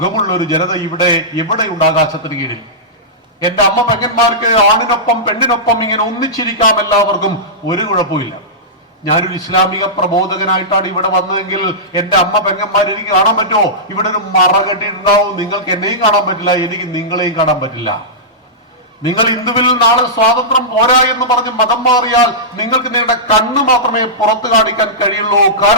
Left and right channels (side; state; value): both; normal; correlation -0.15